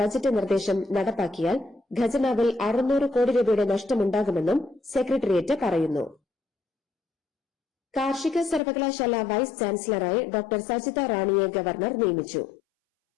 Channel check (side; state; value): right; drops out; at 8.6 s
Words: ബജറ്റ് നിർദ്ദേശം നടപ്പാക്കിയാൽ ഖജനാവിൽ 600 കോടി രൂപയുടെ നഷ്ടമുണ്ടാകുമെന്നും സെക്രട്ടേറിയറ്റ് പറയുന്നു. കാർഷിക സർവകലാശാല വൈസ് ചാൻസലറായി ഡോക്ടർ സജിത റാണിയെ ഗവർണർ നിയമിച്ചു.